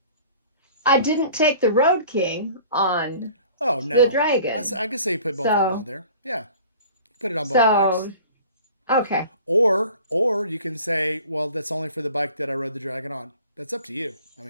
I didn't take the Road King on Oh no, the Dragon. I can say you put both of them on there. Yeah, put it on both bikes. Okay. Or you can say, well, that's only for the bike that I rode the Dragon on. That's up to you. I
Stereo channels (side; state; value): both; inverted; correlation -0.46